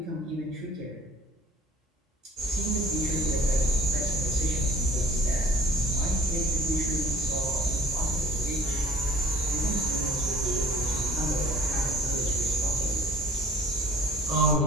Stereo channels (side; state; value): both; normal; correlation 0.53